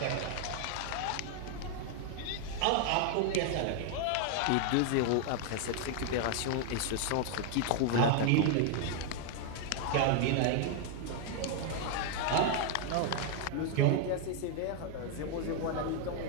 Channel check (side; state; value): both; different; correlation 0.00